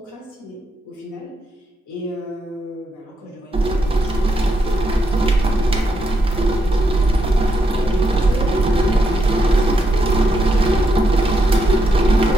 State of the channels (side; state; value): both; normal; correlation 0.80